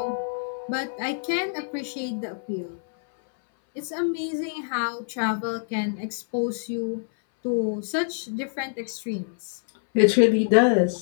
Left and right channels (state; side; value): silent; right; 60 dB below the other